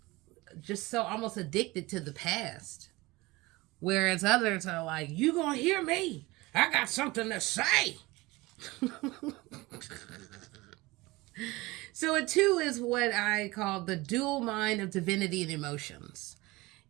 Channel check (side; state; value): left; quieter; 21.5 dB